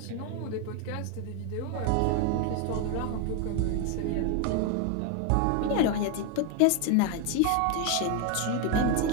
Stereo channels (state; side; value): different; both; correlation 0.01